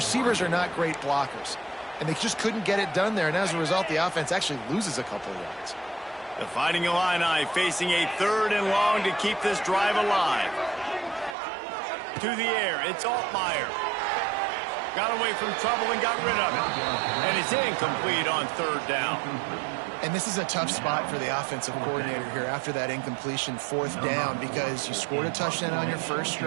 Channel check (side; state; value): left; drops out; at 11.4 s